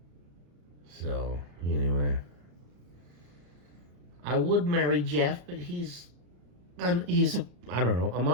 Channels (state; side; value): late; left; 34 ms